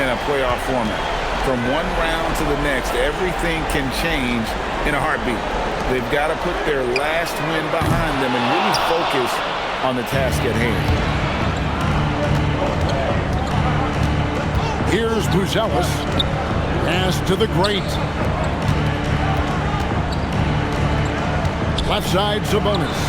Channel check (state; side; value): identical; both; correlation 1.00